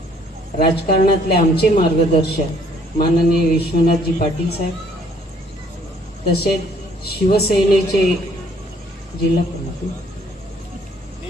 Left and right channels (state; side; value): normal; both; correlation 0.62